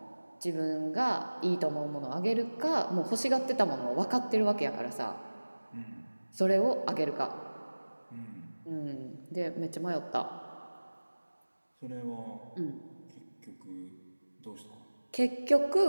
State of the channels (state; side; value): inverted; both; correlation -1.00